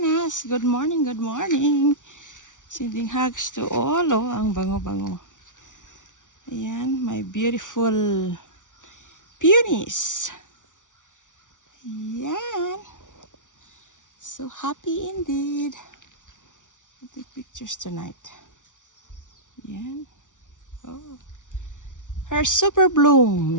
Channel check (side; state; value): right; late; 0.87 ms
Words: Good morning, good morning. Sending hugs to all. Oh, ang bango-bango. Ayan, my beautiful peonies. Ayan. So happy indeed. I'll take pictures tonight. Ayan. Oh. Her super